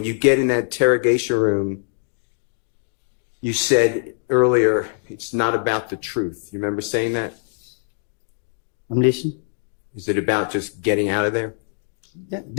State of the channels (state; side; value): silent; right; 60 dB below the other